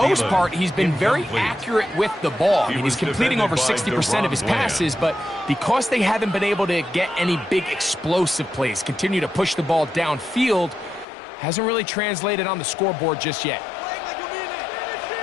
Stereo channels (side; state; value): right; drops out; at 11.1 s